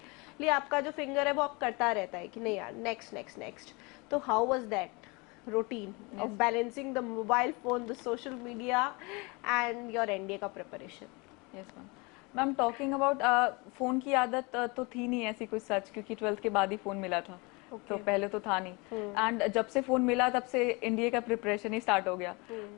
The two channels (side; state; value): right; quieter; 27.7 dB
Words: आपका जो फिंगर है वो आप करता रहता है कि नहीं यार नेक्स्ट नेक्स्ट नेक्स्ट। तो how was that routine of balancing the mobile phone, the social media and your NDA का preparation? Yes ma'am. Ma'am talking about phone की आदत तो थी नहीं ऐसी कुछ सच, क्योंकि 12th के बाद ही फोन मिला था। Okay. तो पहले तो था नहीं, एंड जब से फोन मिला तब से एनडीए का प्रिपरेशन ही स्टार्ट हो गया।